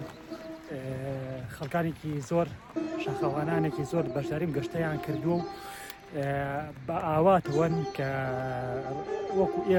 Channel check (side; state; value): both; identical; correlation 1.00